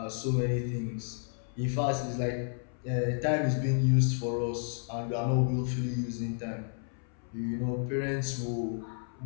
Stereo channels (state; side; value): silent; right; 57 dB below the other